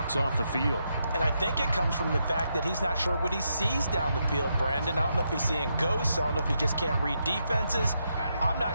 off the field. And I think it comes from the fact that he's not sure what he sees down the field, Brandon. I don't know if he's seeing ghosts. I don't know if he just can't read defenses. I'm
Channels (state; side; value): inverted; both; correlation -0.81